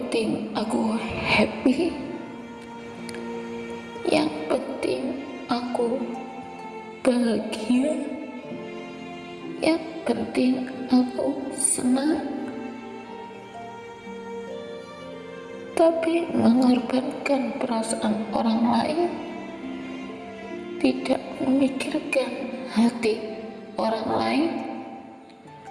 aku happy, yang penting aku bahagia, yang penting aku senang, tapi mengorbankan perasaan orang lain, tidak memikirkan hati orang lain.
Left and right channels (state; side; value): identical; both; correlation 1.00